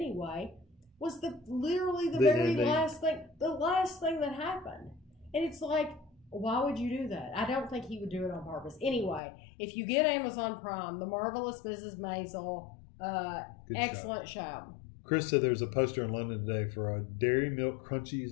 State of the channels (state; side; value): drops out; right; at 9.2 s